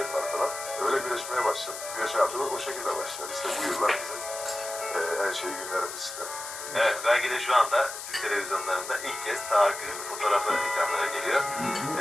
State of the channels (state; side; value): noise; left; hiss, 9 dB below the sound